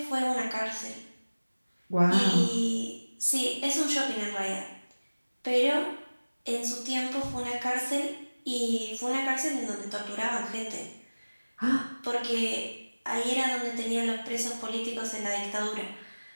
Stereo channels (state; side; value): inverted; both; correlation -1.00